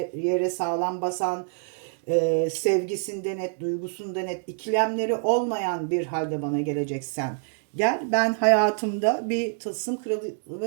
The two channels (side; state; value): left; silent; digital silence